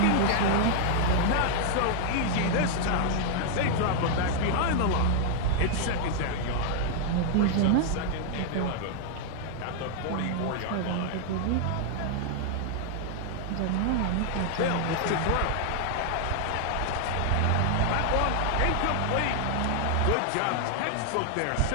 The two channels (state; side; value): different; both; correlation 0.00